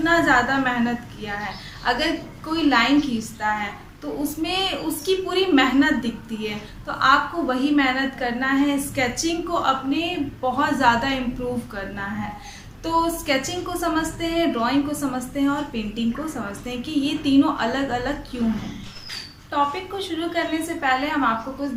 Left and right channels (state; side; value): identical; both; correlation 1.00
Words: ज़्यादा मेहनत किया है। अगर कोई लाइन खींचता है तो उसमें उसकी पूरी मेहनत दिखती है। तो आपको वही मेहनत करना है, स्केचिंग को अपने बहुत ज़्यादा इम्प्रूव करना है। तो स्केचिंग को समझते हैं, ड्राइंग को समझते हैं और पेंटिंग को समझते हैं कि ये तीनों अलग अलग क्यों हैं। टॉपिक को शुरू करने से पहले हम आपको कुछ